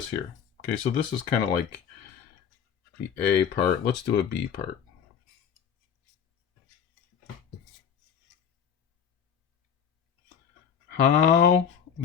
here. Okay, so this is kind of like the A part. Let's do a B part. how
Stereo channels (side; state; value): right; quieter; 7.8 dB